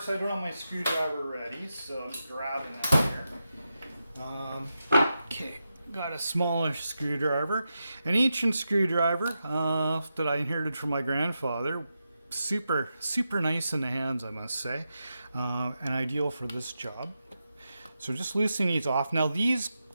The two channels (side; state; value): both; inverted; correlation -0.88